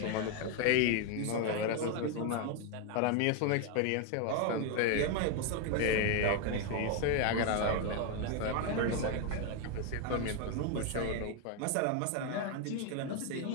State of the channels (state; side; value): different; both; correlation 0.01